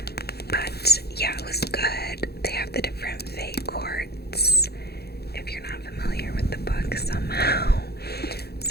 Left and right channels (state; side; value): late; right; 0.46 ms